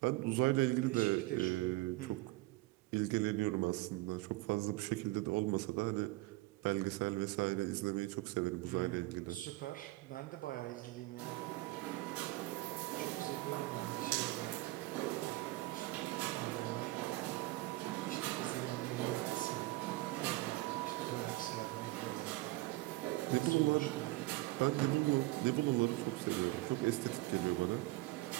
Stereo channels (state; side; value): quieter; left; 20.3 dB